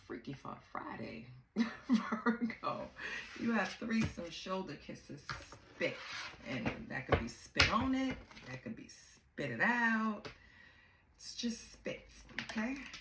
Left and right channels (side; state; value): both; identical; correlation 1.00